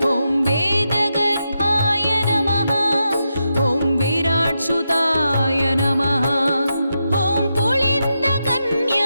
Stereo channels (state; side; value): inverted; both; correlation -0.86